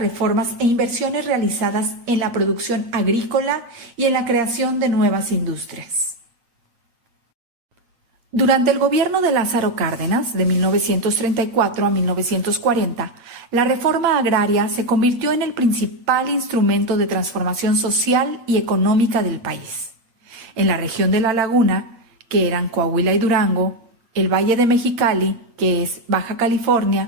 e inversiones realizadas en la producción agrícola y en la creación de nuevas industrias. Durante el gobierno de Lázaro Cárdenas, de 1934 a 1940, la reforma agraria se convirtió en el principal instrumento de transformación social y económica del país. En la región de La Laguna, que eran Coahuila y Durango, el Valle de Mexicali, que es Baja California,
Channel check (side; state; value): left; late; 8.4 ms